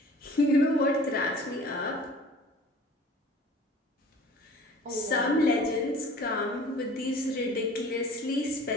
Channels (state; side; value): normal; both; correlation 0.46